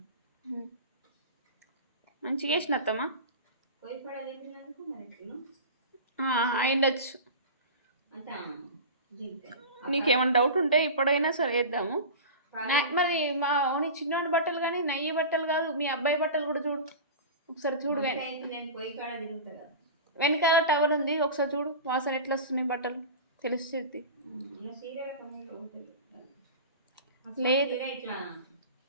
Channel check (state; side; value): inverted; both; correlation -0.31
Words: మంచిగా వేసిన అత్తమ్మా. పోయి పడ చెప్పినందుకు మరి అయిండొచ్చు. అంతా నీకేమైనా డౌట్ ఉంటే ఇప్పుడైనా సరే వేద్దాము. మరి మా ఓని చిన్నోడి బట్టలు కానీ నయ్యి బట్టలు కాదు, మీ అబ్బాయి బట్టలు కూడా చూడు ఒకసారి. చూడు నేను పోయి కాడ తిరుగుతా కదా, వెనకాల టవల్ ఉంది, ఒకసారి చూడు వాసన ఎట్లా వస్తున్నాయి బట్టలు తెలుస్తుంది. లేదు ఇట్లా